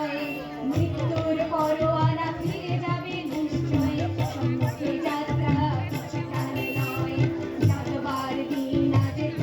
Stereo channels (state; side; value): identical; both; correlation 1.00